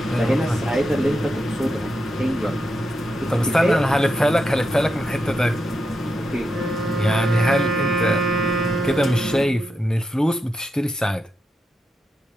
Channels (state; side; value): normal; both; correlation 0.85